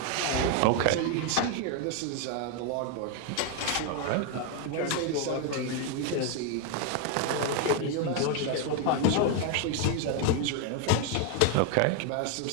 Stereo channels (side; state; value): both; different; correlation 0.01